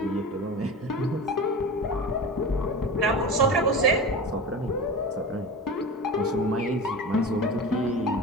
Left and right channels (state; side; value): normal; both; correlation 0.30